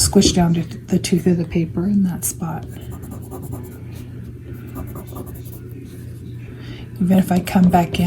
down to the tooth of the paper in that spot. Even if I come back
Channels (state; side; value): identical; both; correlation 1.00